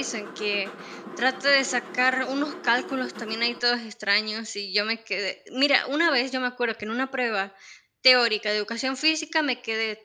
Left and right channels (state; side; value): identical; both; correlation 1.00